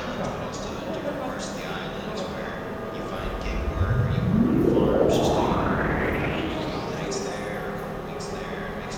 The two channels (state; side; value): identical; both; correlation 1.00